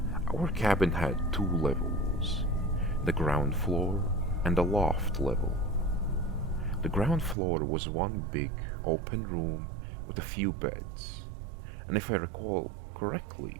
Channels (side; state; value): left; drops out; at 7.4 s